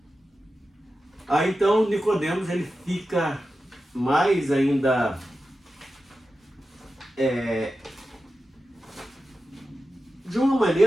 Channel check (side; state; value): both; normal; correlation 0.92